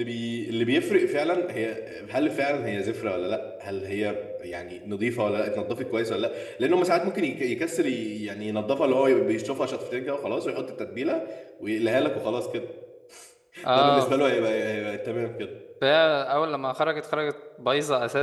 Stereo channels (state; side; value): identical; both; correlation 1.00